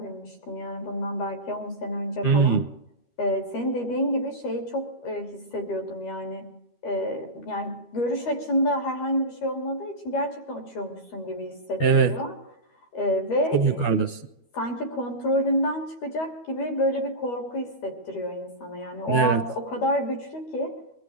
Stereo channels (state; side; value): late; right; 13 ms